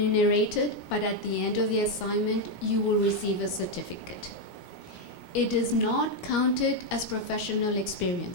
but at the end of the assignment, you will receive a certificate. It is not counted as professional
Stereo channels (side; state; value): right; late; 17 ms